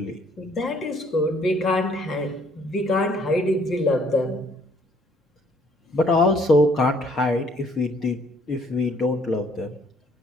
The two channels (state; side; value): normal; both; correlation 0.63